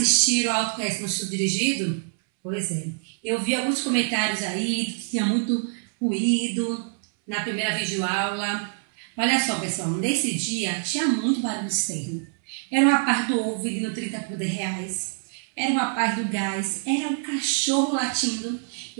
ao Autoconhecimento no Estudo Dirigido? Pois é. Eu vi alguns comentários aí que tinha muito ruído na primeira videoaula. Olha só, pessoal, nesse dia tinha muito barulho externo. Era uma parte do ovo vendendo 30 por R$10. Era uma parte do gás. Era um cachorro latindo.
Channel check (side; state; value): left; silent; 61 dB below the other